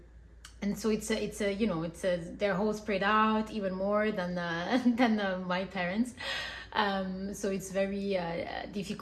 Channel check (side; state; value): both; identical; correlation 1.00